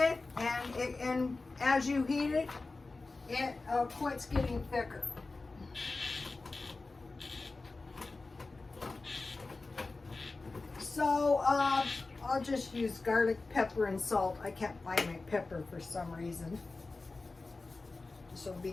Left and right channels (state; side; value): quieter; right; 3.6 dB